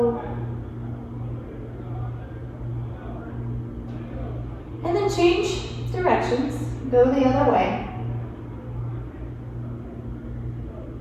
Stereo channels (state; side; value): identical; both; correlation 1.00